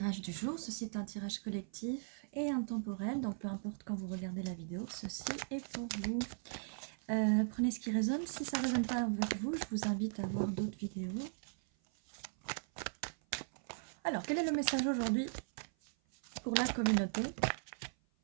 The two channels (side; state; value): left; silent; 52 dB below the other